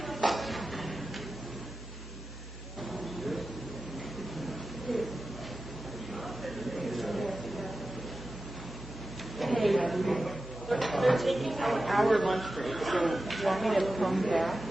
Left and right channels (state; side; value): normal; both; correlation 0.93